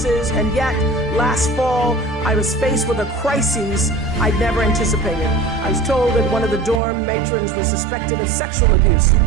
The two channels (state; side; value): drops out; left; at 6.8 s